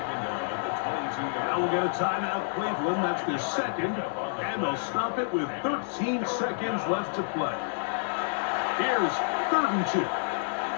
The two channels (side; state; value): right; silent; digital silence